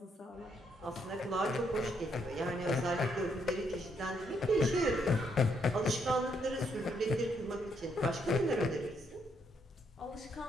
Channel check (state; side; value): normal; both; correlation 0.74